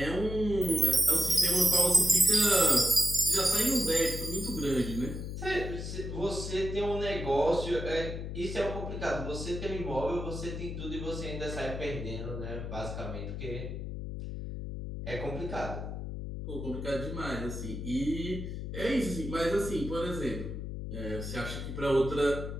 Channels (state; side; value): noise; left; hum, 6 dB below the sound